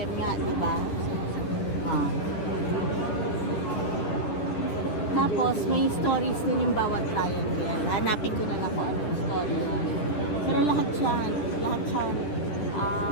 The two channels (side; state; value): right; late; 10 ms